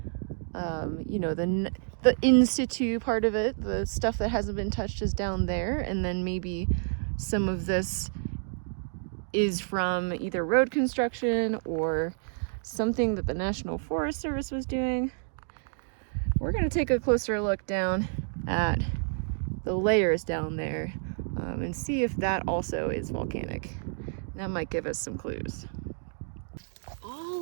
The in situ part of it, the stuff that hasn't been touched is down there, and then maybe some of this is from either road construction or something that the National Forest Service was doing. We're gonna take a closer look down at the layers down there and see if that also is volcanic. That might give us some clues.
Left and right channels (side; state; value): left; silent; digital silence